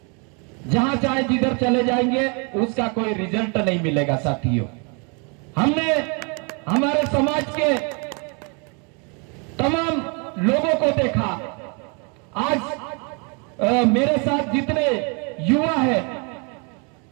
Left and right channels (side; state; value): left; quieter; 34.5 dB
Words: जहां चाहे जिधर चले जाएंगे, उसका कोई रिजल्ट नहीं मिलेगा। साथियों, हमने हमारे समाज के तमाम लोगों को देखा। आज मेरे साथ जितने युवा है,